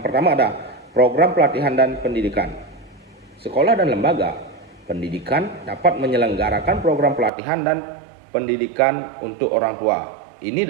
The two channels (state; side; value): drops out; left; at 7.3 s